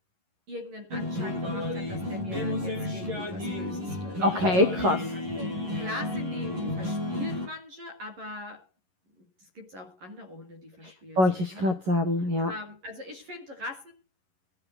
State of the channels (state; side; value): late; left; 11 ms